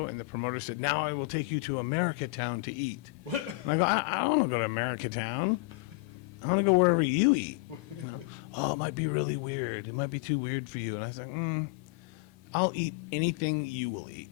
and the promoter said, "Now I will take you to America Town to eat." What? And I go, I don't want to go to America Town. I want to go wherever you eat. You know? Oh, it might be really weird. It might be too weird for you. And I was like, I'll eat anything you will eat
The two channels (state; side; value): quieter; right; 24.5 dB